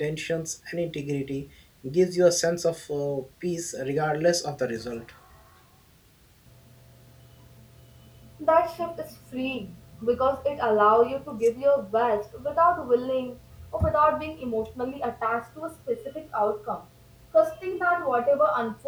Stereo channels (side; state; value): both; identical; correlation 1.00